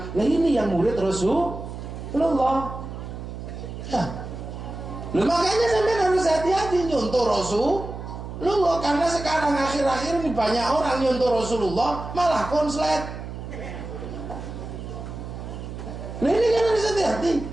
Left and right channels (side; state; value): right; noise; hum, 9 dB below the sound